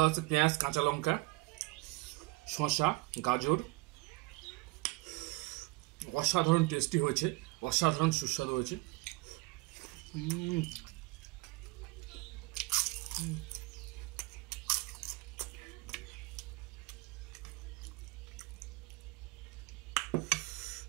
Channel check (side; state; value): left; quieter; 24.7 dB